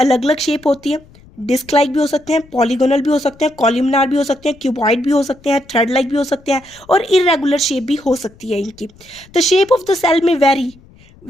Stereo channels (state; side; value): noise; left; rumble, 26 dB below the sound